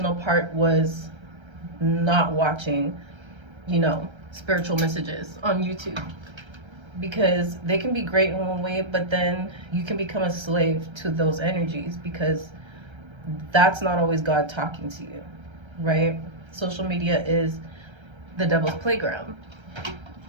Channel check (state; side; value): late; left; 1.3 ms